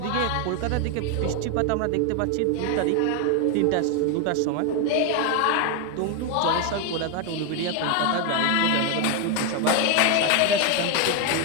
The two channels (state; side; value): different; both; correlation 0.01